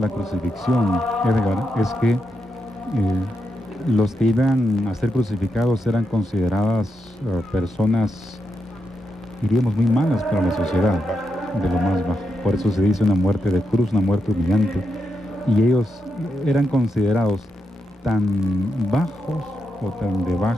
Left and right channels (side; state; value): both; normal; correlation 0.85